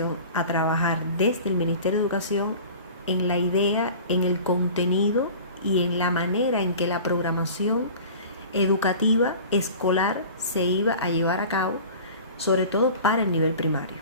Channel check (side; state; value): both; inverted; correlation -0.40